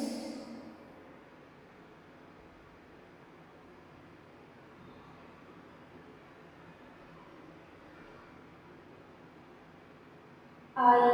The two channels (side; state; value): both; identical; correlation 1.00